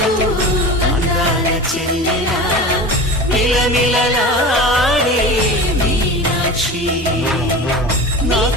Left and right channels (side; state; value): both; normal; correlation 0.32